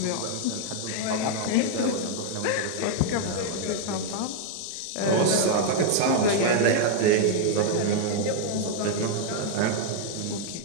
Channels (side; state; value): both; different; correlation 0.00